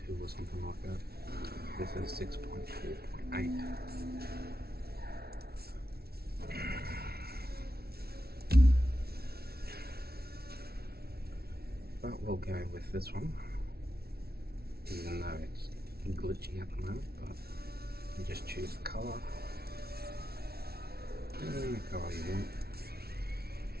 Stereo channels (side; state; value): left; late; 0.45 ms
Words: or something like that. This is 6.4.8. But we'll go with this one, even though it's glitchy at the moment. But you just choose the colour, and the colour you want,